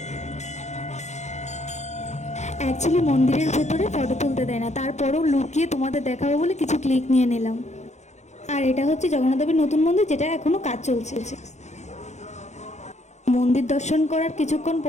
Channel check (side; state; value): right; late; 0.33 ms